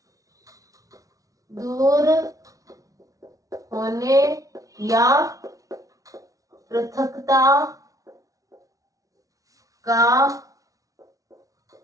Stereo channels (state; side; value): late; left; 0.17 ms